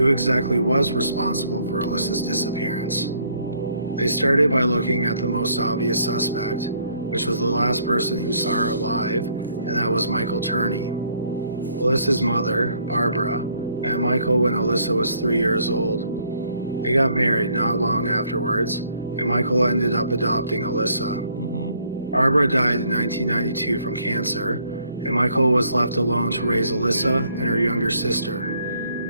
exactly was responsible for Alyssa's disappearance. They started by looking at the most obvious suspect, which was the last person who saw her alive, and that was Michael Turney. Alyssa's mother, Barbara, met Michael when Alyssa was 3 years old. They got married not long afterwards, and Michael ended up adopting Alyssa. Barbara died in 1992 from cancer, and Michael was left alone to raise Alyssa and her younger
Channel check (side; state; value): both; inverted; correlation -0.65